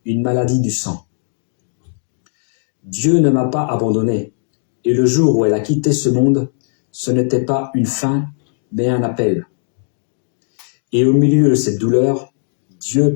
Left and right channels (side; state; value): right; silent; 67 dB below the other